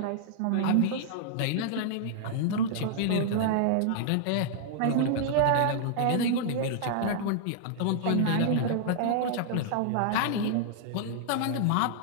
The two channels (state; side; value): different; both; correlation -0.01